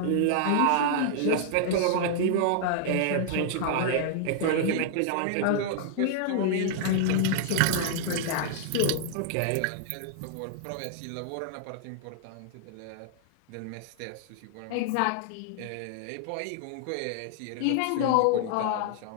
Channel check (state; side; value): different; both; correlation -0.01